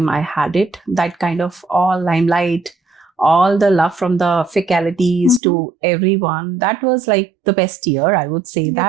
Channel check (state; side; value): drops out; left; at 5.4 s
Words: I had it. That kind of all limelight, all the love from the faculties to everyone. That was like the best year, I would say. You